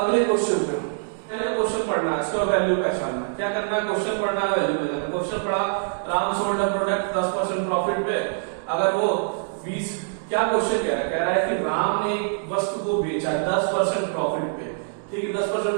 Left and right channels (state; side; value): silent; left; digital silence